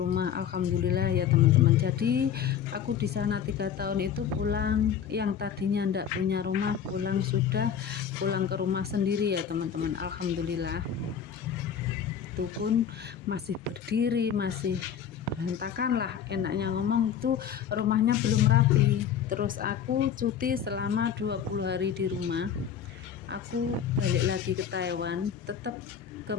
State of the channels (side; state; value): right; quieter; 8.3 dB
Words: Alhamdulillah ya teman-teman. Jadi aku di sana 3 tahun itu pulang, yang tadinya ndak punya rumah sudah pulang ke rumah sendiri ya teman-teman. Alhamdulillah, itu pun masih berdiri, masih berantakan lah, enaknya ngomong itu rumahnya belum rapi. Terus aku cuti selama 20 hari di rumah, aku balik lagi ke Taiwan, tetap ke